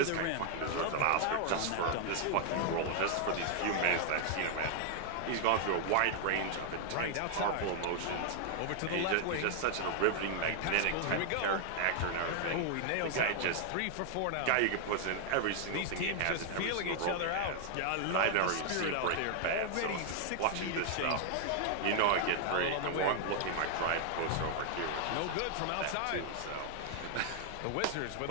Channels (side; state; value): both; different; correlation 0.00